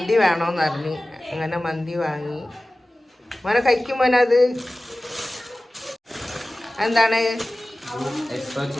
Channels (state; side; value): normal; both; correlation 0.97